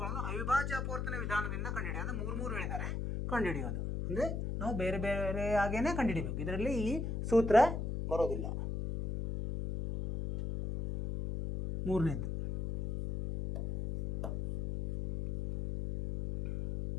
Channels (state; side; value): noise; left; hum, 2 dB below the sound